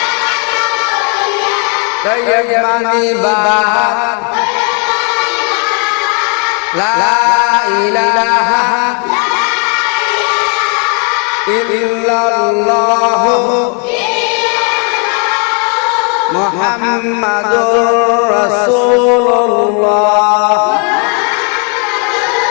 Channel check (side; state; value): right; quieter; 38.6 dB